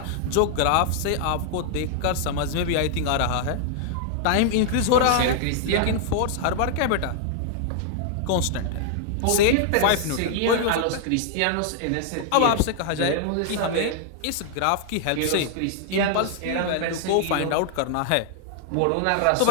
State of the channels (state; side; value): different; both; correlation 0.00